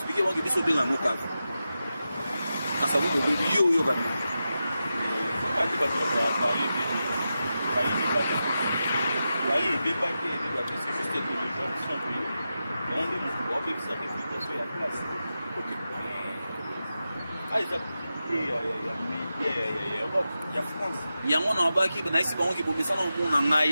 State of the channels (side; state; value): both; inverted; correlation -0.91